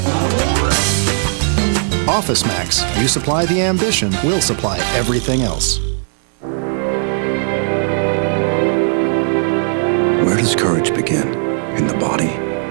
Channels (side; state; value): left; silent; 67 dB below the other